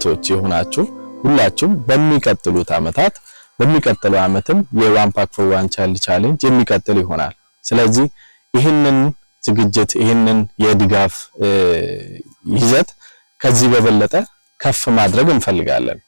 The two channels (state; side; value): inverted; both; correlation -1.00